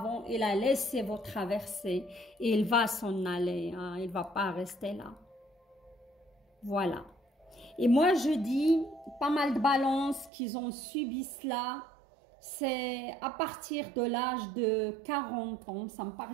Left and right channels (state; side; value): drops out; left; at 10.3 s